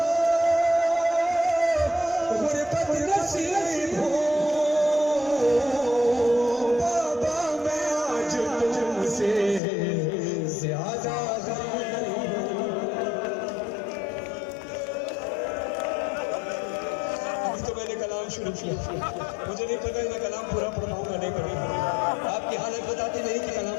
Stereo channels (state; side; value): drops out; right; at 9.6 s